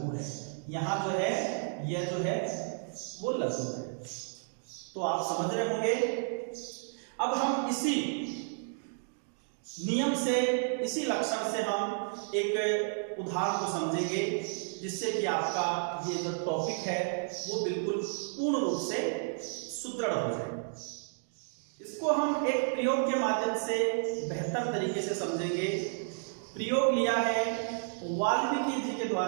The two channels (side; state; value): left; silent; digital silence